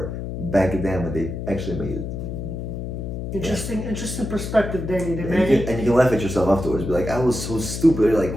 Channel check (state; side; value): noise; left; hum, 6 dB below the sound